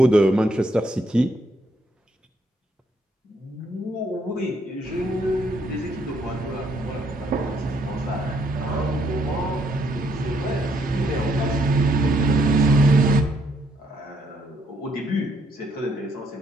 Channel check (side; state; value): both; normal; correlation 0.71